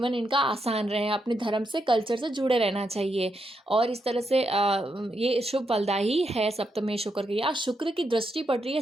इनका आसान रहे, अपने धर्म से, कल्चर से जुड़े रहना चाहिए। और इस तरह से ये शुभ फलदायी है सप्तमेश होकर के। यहाँ शुक्र की दृष्टि पड़ रही है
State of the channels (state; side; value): normal; both; correlation 0.82